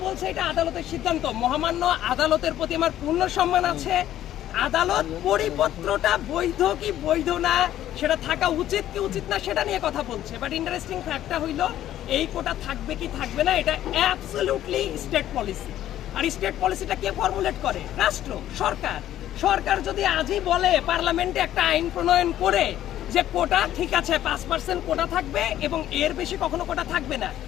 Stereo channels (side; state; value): right; quieter; 12.5 dB